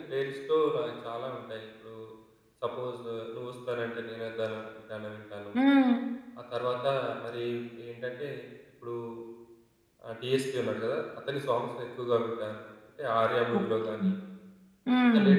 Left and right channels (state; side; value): identical; both; correlation 1.00